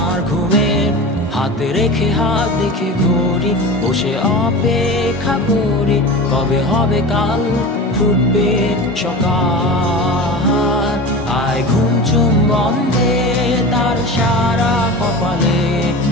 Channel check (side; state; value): both; normal; correlation 0.31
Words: ঘুমের। হাতে রেখে হাত দেখে ঘড়ি, বসে অপেক্ষা করি, কবে হবে কাল, ফুটবে সকাল। আয় ঘুম চুম বন্ধে তার সারা কপালে,